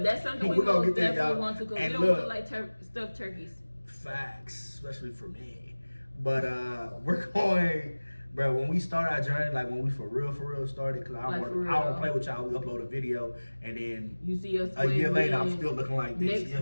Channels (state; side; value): inverted; both; correlation -1.00